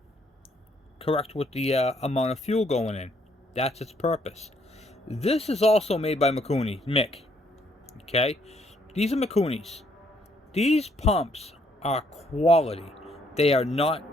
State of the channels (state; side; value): normal; both; correlation 0.69